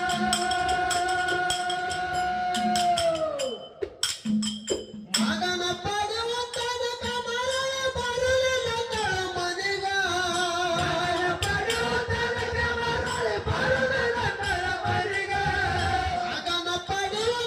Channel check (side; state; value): both; identical; correlation 1.00